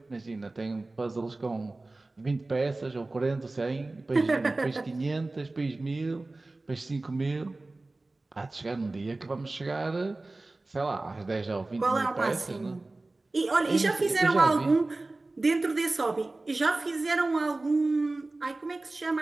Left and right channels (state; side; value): quieter; left; 3.1 dB